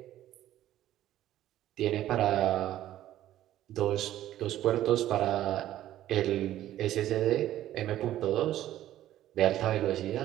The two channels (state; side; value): quieter; left; 13.1 dB